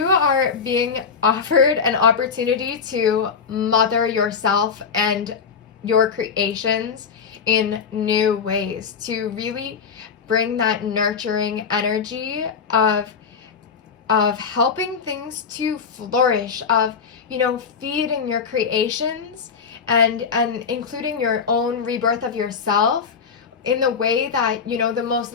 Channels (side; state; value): right; quieter; 6.0 dB